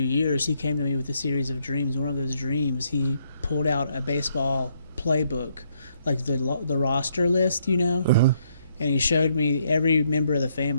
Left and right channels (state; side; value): inverted; both; correlation -0.72